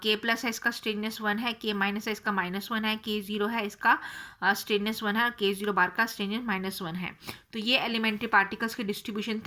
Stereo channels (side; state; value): both; identical; correlation 1.00